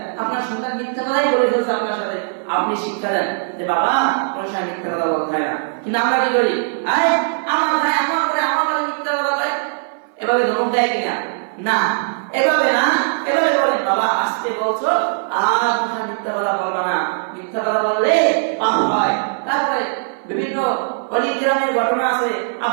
আপনার সন্তান মিথ্যা কথাই বলে ফেলছে আপনার সাথে, আপনি শিক্ষা দেন যে বাবা কোন সময় মিথ্যা কথা বলতে হয় না। কিন্তু আমরা কি করি, আরে আমার ভাই আমার করে আমার বলে মিথ্যা কথা বলে, এভাবে ধমক দেয় কিনা? না, এভাবে না, এভাবে বলেন, বাবা আজকে বলছো আর কোথায় মিথ্যা কথা বলবা না, মিথ্যা কথা বললে পাপ হয়। তারপরে বিভিন্ন অলি কিরামের ঘটনা আছে,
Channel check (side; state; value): left; silent; 60 dB below the other